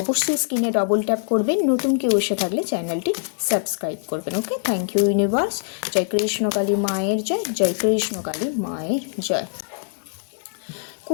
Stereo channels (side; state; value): right; silent; digital silence